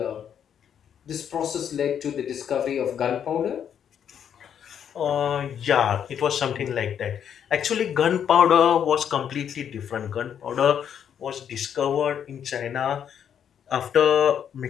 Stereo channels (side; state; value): right; quieter; 8.7 dB